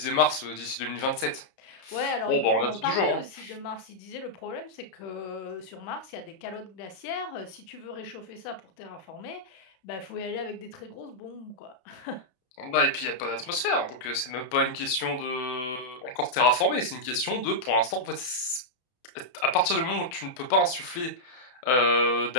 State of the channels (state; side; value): late; right; 32 ms